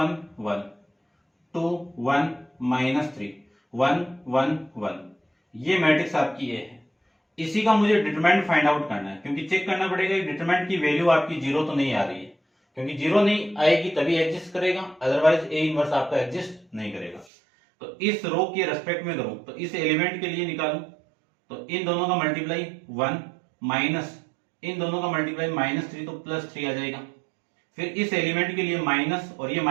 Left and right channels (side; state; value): left; drops out; at 17.2 s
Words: 1, 2 1 -3 1 1 1, ये मैट्रिक्स आपकी ए है। इसी का मुझे डिटरमिनेंट फाइंड आउट करना है, क्योंकि चेक करना पड़ेगा डिटरमिनेंट की वैल्यू आपकी 0 तो नहीं आ रही है, क्योंकि 0 नहीं आएगी तभी एग्जिस्ट करेगा, अदरवाइज ए इनवर्स आपका एग्जिस्ट नहीं करेगा। तो इस रो के रेस्पेक्ट में करूं तो इस एलिमेंट के लिए निकालूं तो इन दोनों का मल्टीप्लाई 1 माइनस इन दोनों का मल्टीप्लाई -3 तो +3 आ जाएगा। फिर इस एलिमेंट के लिए माइनस और ये